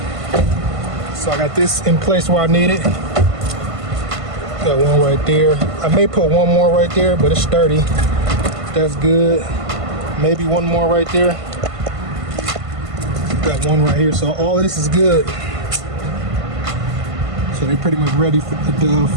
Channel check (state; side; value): late; left; 1.5 ms